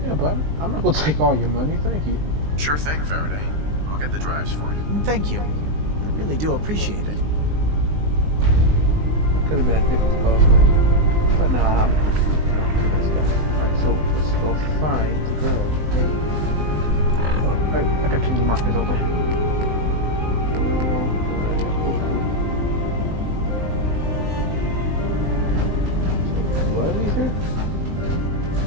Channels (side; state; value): left; late; 19 ms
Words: Yeah, but I'm not gonna take all your money. Thank you. Sure thing, Faraday. I'll get the drives for you. Thank you. I really do appreciate it. Could have been a different cost money, but nah, I'm a nice guy. Alright, so let's go find the girl. Oh, I got too many markers open. Do I leave here?